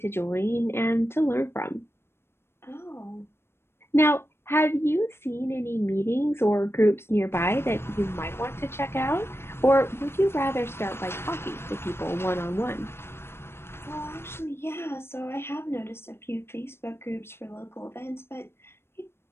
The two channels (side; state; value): right; late; 0.12 ms